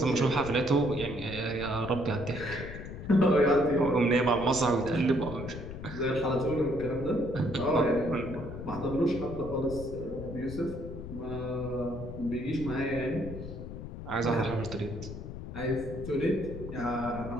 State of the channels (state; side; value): noise; left; rumble, 9 dB below the sound